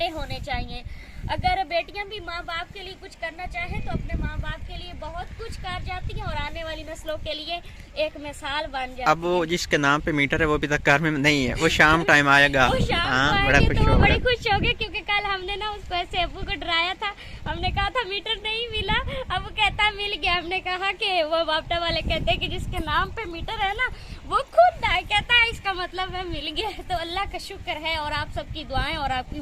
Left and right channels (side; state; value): both; identical; correlation 1.00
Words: होने चाहिए। अगर बेटियां भी माँ बाप के लिए कुछ करना चाहे तो अपने माँ बाप के लिए बहुत कुछ कर जाती हैं और आने वाली नस्लों के लिए एक मिसाल बन जाती है। अब वो जिसके नाम पे मीटर है वो अभी तक घर में नहीं है, वो शाम टाइम आएगा। वो शाम हाँ, को बड़ा आएंगे खुश तो वो होगा। बड़े खुश हो गए क्योंकि कल हमने ना उसको ऐसे अब्बू को डराया था। हमने कहा था मीटर नहीं मिला, अब वो कहता मिल गया। हमने कहा कि वो बापटा वाले कहते हैं कि जिसके नाम पे मीटर है ना वो खुद आए, कहता है इसका मतलब है मिल गया। तो अल्लाह का शुक्र है और आप सबकी दुआएं और आपकी